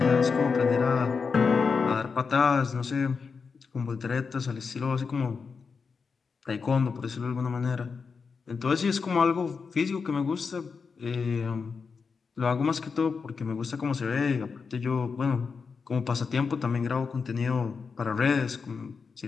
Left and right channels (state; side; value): quieter; right; 5.3 dB